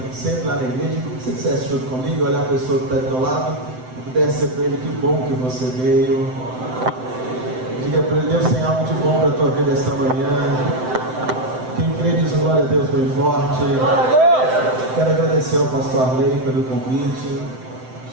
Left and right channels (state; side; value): late; left; 7.8 ms